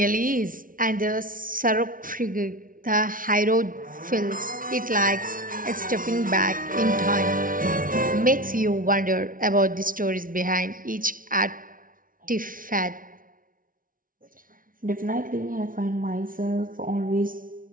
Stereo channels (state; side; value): late; left; 0.40 ms